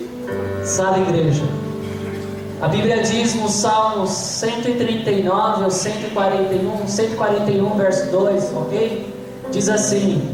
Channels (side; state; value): both; identical; correlation 1.00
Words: Sabe, igreja, a Bíblia diz no Salmos 139 ou 141 verso 2, ok? Diz